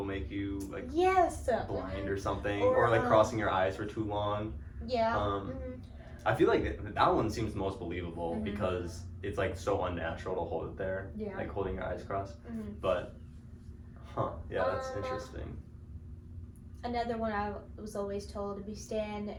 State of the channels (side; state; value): both; identical; correlation 1.00